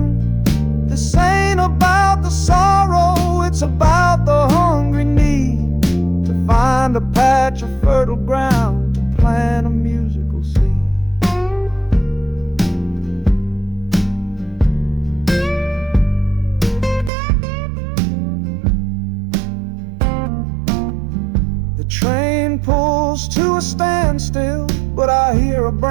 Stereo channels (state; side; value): drops out; left; at 17.1 s